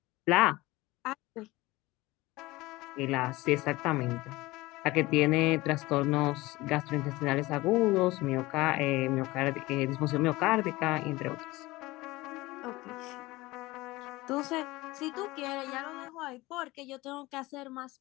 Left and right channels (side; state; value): right; quieter; 20.3 dB